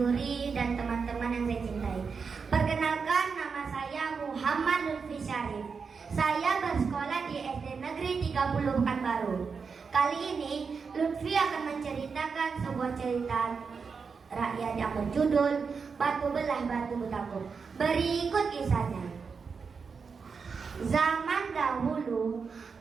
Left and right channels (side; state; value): left; quieter; 5.4 dB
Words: dan teman-teman yang saya cintai. Perkenalkan, nama saya Muhammad Lutfi Syarif. Saya bersekolah di SD Negeri 30 Pekanbaru. Kali ini Lutfi akan menceritakan sebuah cerita rakyat yang berjudul Batu Belah Batu Betangkup. Berikut kisahnya. Zaman dahulu,